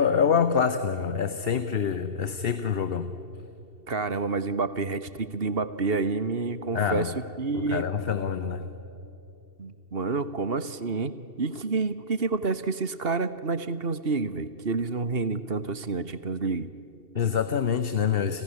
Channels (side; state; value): left; late; 2.7 ms